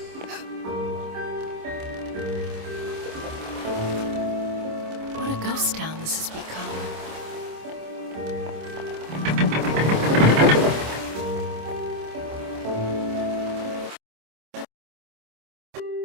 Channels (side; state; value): left; late; 26 ms